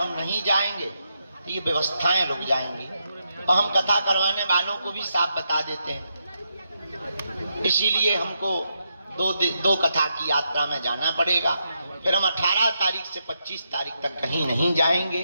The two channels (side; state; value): both; inverted; correlation -0.82